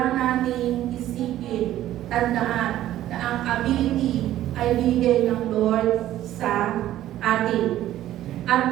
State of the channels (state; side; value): quieter; left; 13.3 dB